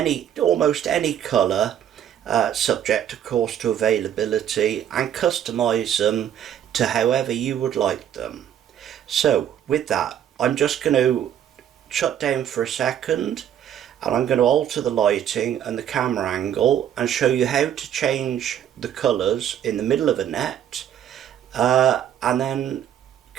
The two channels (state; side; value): quieter; left; 10.0 dB